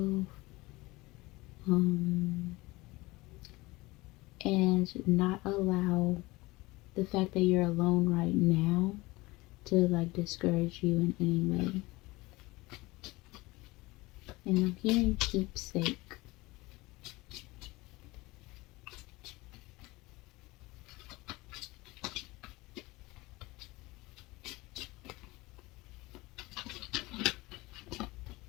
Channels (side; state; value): right; quieter; 21.6 dB